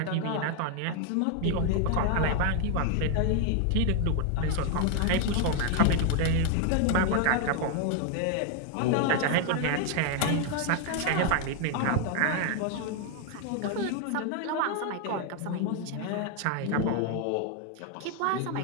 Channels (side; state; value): both; different; correlation 0.00